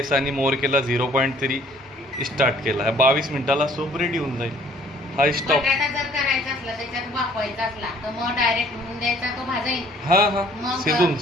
आणि मोर केला, 0.3 स्टार्ट केला. 22 मिनिटाला सूप रेडी होऊन जाईल. हा स्टॉप. बटाटा जर करायचा असला, त्याच्यात वाफवायचा असला तर मग डायरेक्ट होऊन द्यायचा, तो भाजायचा. हां हां,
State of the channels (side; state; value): both; normal; correlation 0.58